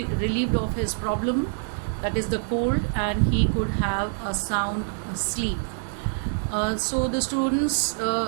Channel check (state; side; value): silent; left; digital silence